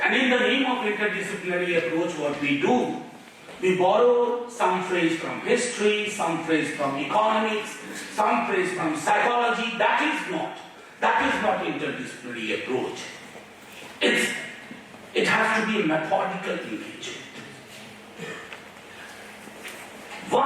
And in the name of interdisciplinary approach, what we do, we borrow some phrase from history, some phrase from economics, some phrase from psychology. That is not interdisciplinary approach. It has to be a methodical engagement.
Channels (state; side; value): identical; both; correlation 1.00